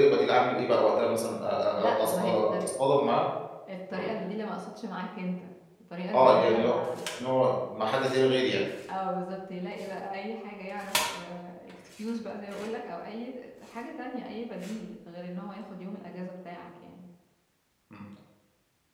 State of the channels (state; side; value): identical; both; correlation 1.00